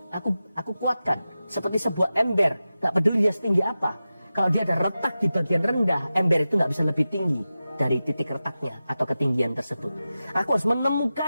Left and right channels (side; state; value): both; inverted; correlation -0.94